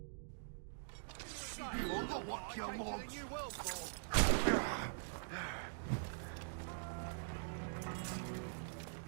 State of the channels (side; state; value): left; silent; digital silence